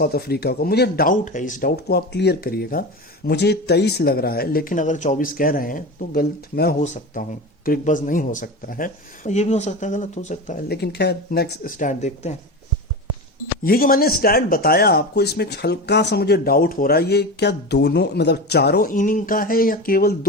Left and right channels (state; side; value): normal; both; correlation 0.26